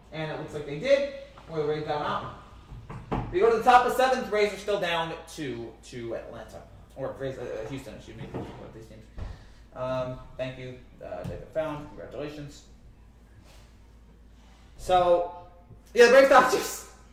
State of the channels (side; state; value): both; identical; correlation 1.00